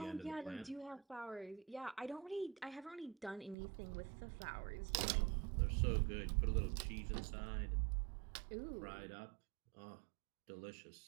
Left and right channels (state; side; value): drops out; left; at 3.6 s